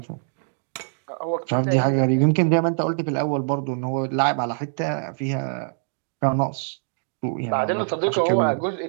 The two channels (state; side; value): silent; left; 61 dB below the other